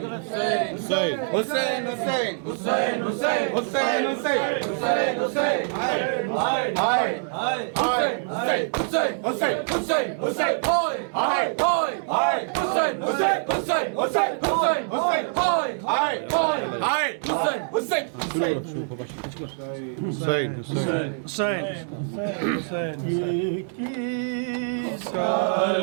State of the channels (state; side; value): silent; left; digital silence